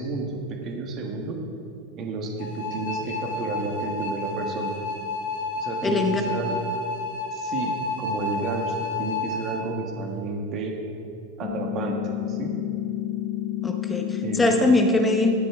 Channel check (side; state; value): both; normal; correlation 0.34